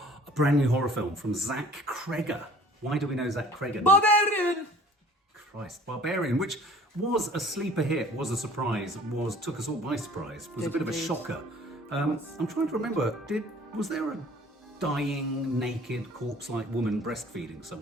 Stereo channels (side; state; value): both; normal; correlation 0.51